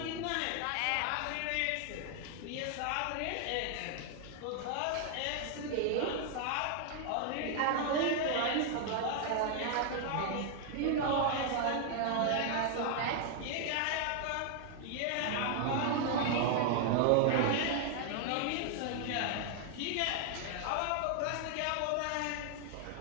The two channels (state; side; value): different; both; correlation 0.00